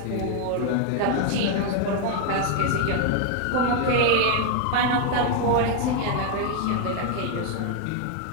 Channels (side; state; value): both; different; correlation 0.01